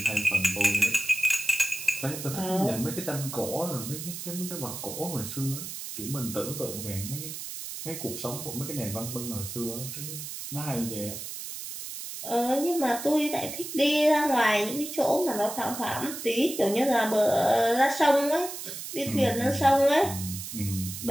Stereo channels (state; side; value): noise; right; hiss, 8 dB below the sound